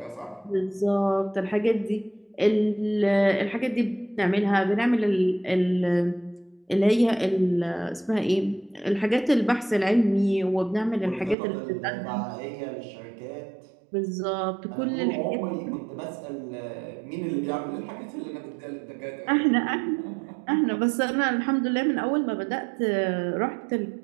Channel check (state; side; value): drops out; left; at 11.4 s